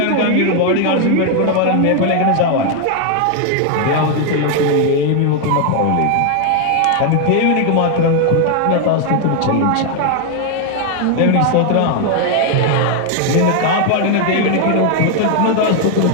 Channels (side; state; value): both; different; correlation 0.00